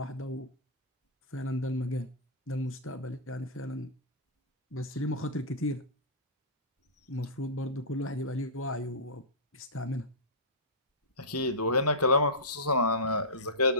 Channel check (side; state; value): both; normal; correlation -0.19